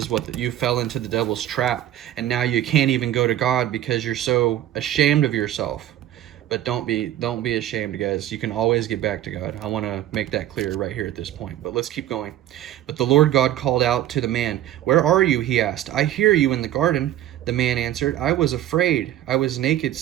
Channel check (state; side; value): quieter; left; 12.7 dB